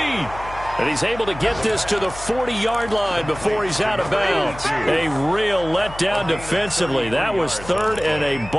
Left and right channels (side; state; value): left; noise; hum, 15 dB below the sound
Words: And he's able to get this to the 40-yard line before he's out of bounds. A real letdown defensively. That was 3rd and a